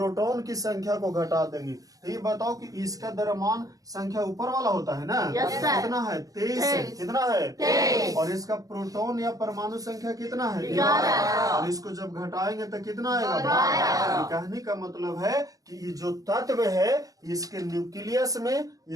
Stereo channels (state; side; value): late; left; 0.17 ms